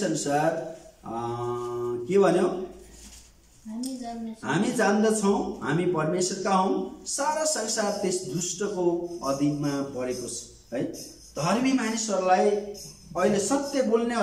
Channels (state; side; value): identical; both; correlation 1.00